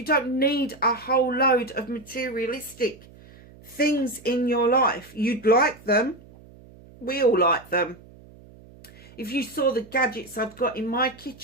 don't need a whole load of materialistic things in your life. You'd like them. We all like them. If you saw the gadgets I've got in my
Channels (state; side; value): noise; right; hum, 22 dB below the sound